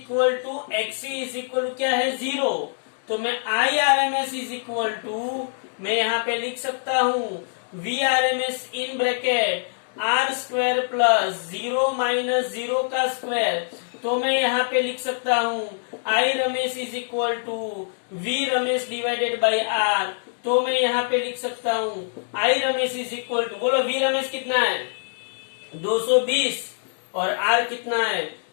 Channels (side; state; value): right; silent; digital silence